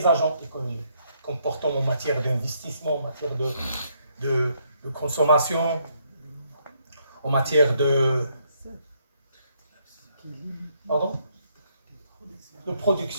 agents économiques. Comportements en matière d'investissement, en matière de consommation, en matière de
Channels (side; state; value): both; inverted; correlation -0.72